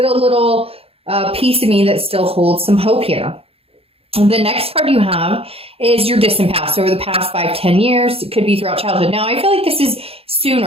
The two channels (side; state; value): left; late; 0.28 ms